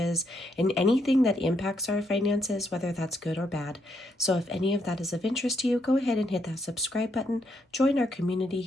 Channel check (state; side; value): normal; both; correlation 0.76